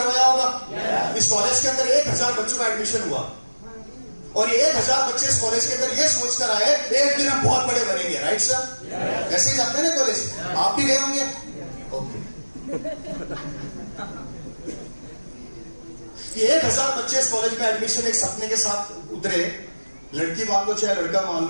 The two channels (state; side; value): inverted; both; correlation -1.00